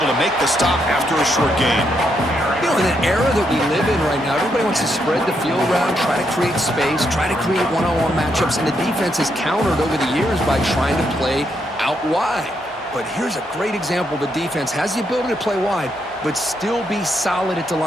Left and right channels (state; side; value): normal; both; correlation 0.78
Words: to make the stop after a short gain. You know, in an era that we live in right now, everybody wants to spread the field around, try to create space, try to create one-on-one matchups, and the defense has countered over the years by trying to play out wide. But here's a great example. The defense has the ability to play wide, but still be solid at the